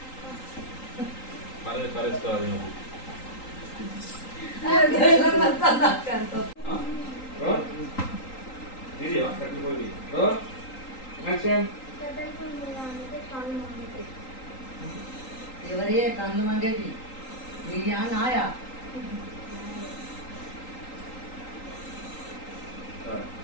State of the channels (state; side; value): late; right; 3.8 ms